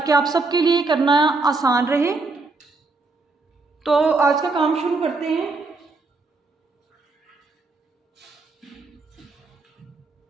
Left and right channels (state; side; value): quieter; left; 3.7 dB